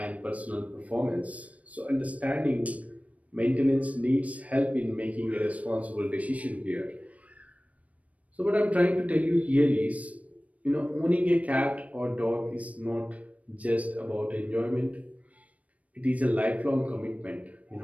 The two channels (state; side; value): late; left; 0.067 ms